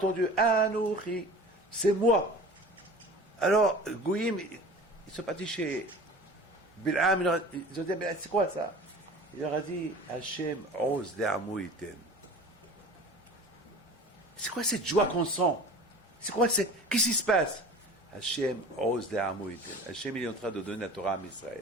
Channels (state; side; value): normal; both; correlation 0.39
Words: Anouchi, c'est moi. Alors, Goïm, ils sont partis chez Bil'am, ils ont dit, mais c'est quoi ça? Il leur a dit, Hachem ose d'Amou iten. C'est quoi cette joie qu'on sent? C'est quoi qu'est-ce qui se passe? Hachem ose d'Amou iten. Hachem, il est en train de donner la Torah à